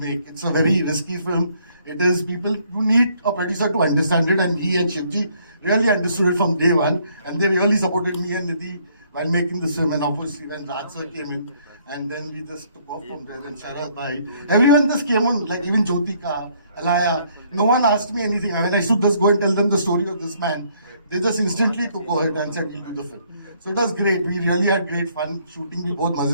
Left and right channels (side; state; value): both; inverted; correlation -0.66